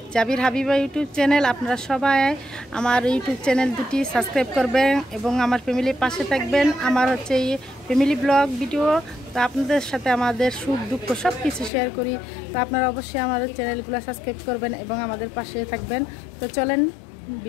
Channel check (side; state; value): right; drops out; at 11.7 s